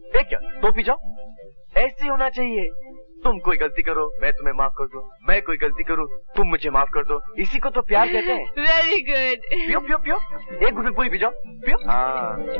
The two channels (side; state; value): both; inverted; correlation -1.00